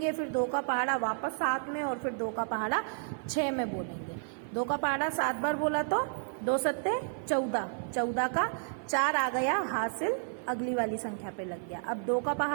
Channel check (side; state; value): left; silent; digital silence